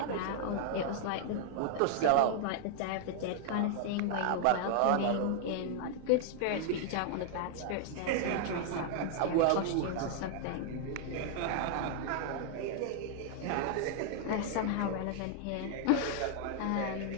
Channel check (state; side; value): different; both; correlation -0.01